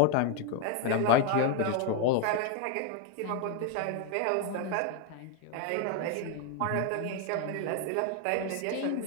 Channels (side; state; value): both; different; correlation 0.01